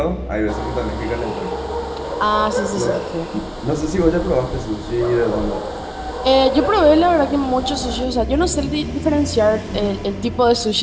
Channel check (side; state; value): both; identical; correlation 1.00